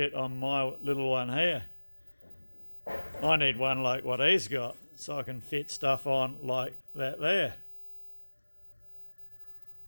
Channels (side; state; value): both; inverted; correlation -1.00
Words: on my little one here. I need one like what he's got, so I can fit stuff on like that there.